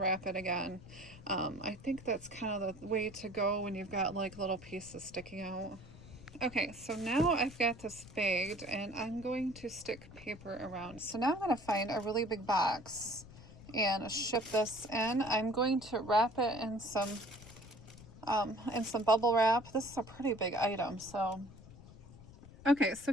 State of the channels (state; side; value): noise; left; rumble, 18 dB below the sound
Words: it again. I think that's kind of the way to go when you've got like little pieces sticking out. Okay, so now I've got this bagged, and I'm going to stick paper around. So now I'm going to find a really big box and ship this in. I'm going to wrap it in some bubble wrap. This is a pretty big item, so. Okay, so